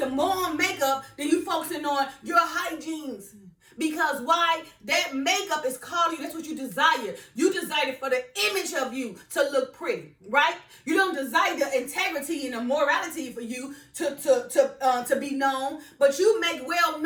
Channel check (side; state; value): both; identical; correlation 1.00